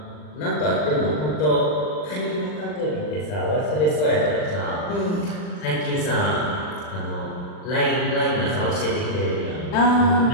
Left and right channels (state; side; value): late; right; 40 ms